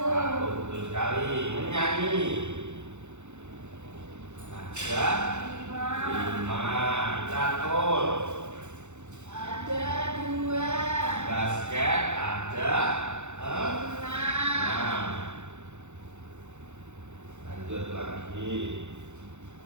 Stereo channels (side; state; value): left; late; 0.83 ms